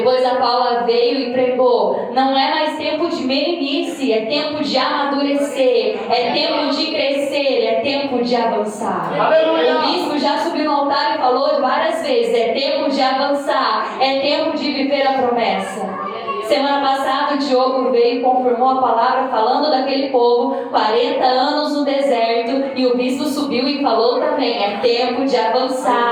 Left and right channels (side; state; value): both; identical; correlation 1.00